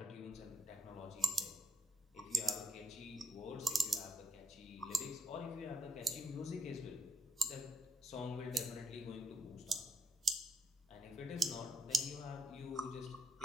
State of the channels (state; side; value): normal; both; correlation 0.77